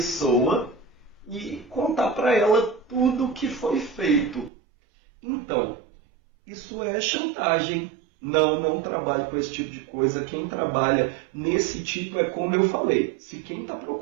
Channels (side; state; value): left; drops out; at 4.5 s